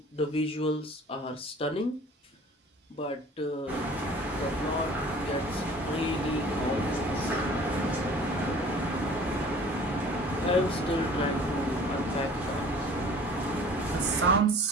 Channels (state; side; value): normal; both; correlation 0.47